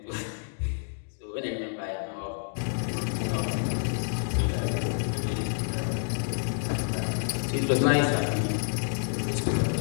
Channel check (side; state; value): right; silent; digital silence